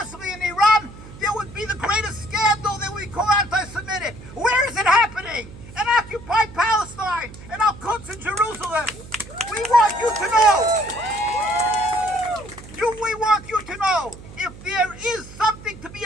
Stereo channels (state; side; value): noise; right; hum, 17 dB below the sound